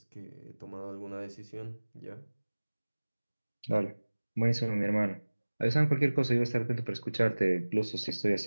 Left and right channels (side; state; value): both; inverted; correlation -1.00